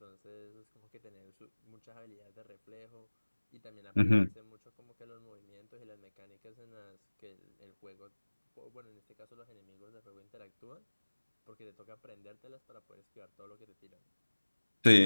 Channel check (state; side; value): inverted; both; correlation -1.00